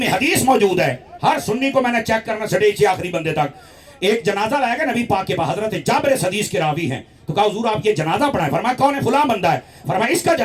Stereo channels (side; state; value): both; identical; correlation 1.00